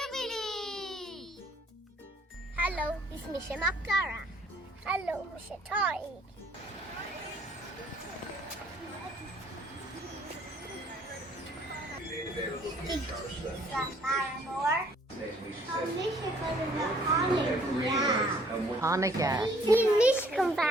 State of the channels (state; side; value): normal; both; correlation 0.60